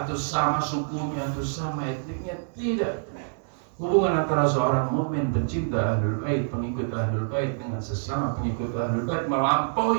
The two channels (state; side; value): silent; left; digital silence